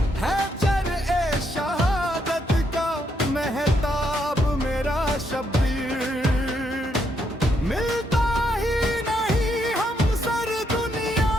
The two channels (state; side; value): normal; both; correlation 0.76